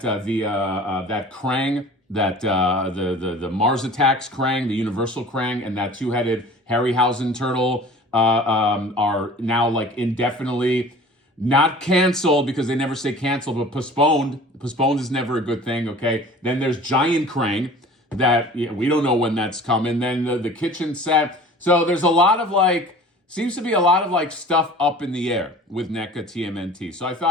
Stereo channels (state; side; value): normal; both; correlation 0.43